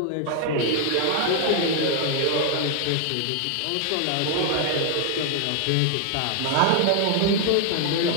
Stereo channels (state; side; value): different; both; correlation 0.00